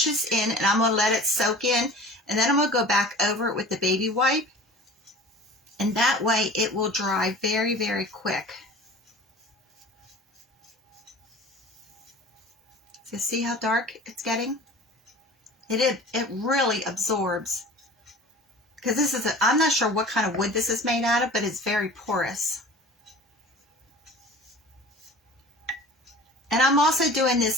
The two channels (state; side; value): normal; both; correlation 0.41